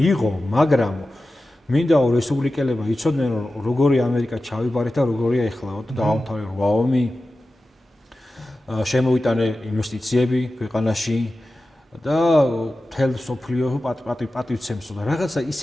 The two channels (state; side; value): normal; both; correlation 0.94